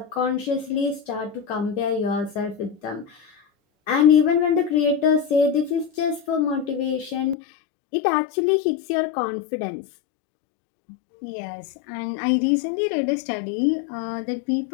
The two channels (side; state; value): right; drops out; at 7.4 s